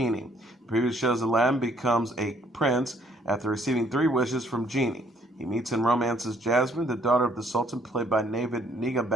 The preview shows Aladdin becomes a prince after receiving 3 wishes from Genie. He meets and romances Jasmine, the daughter of the Sultan, played by Navid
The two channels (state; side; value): normal; both; correlation 0.65